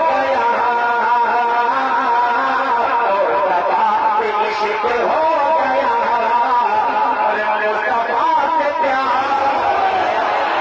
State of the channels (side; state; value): both; identical; correlation 1.00